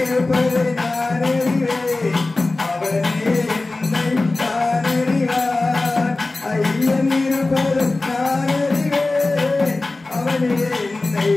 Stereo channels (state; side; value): quieter; right; 3.2 dB